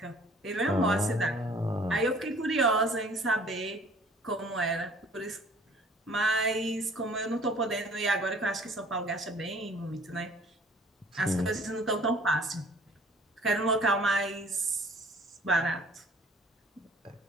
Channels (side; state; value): both; normal; correlation 0.53